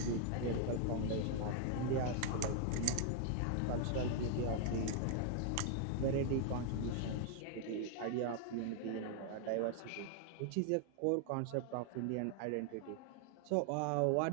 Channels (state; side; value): different; both; correlation 0.00